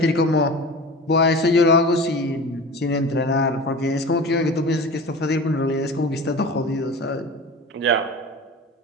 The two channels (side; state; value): both; normal; correlation 0.34